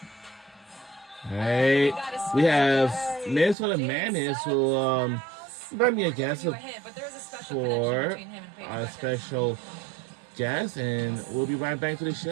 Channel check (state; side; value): drops out; left; at 3.6 s